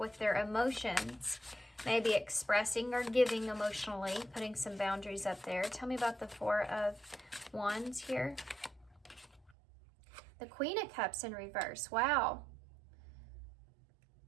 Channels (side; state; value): left; drops out; at 9.6 s